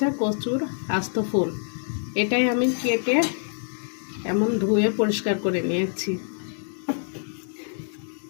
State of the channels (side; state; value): right; silent; 60 dB below the other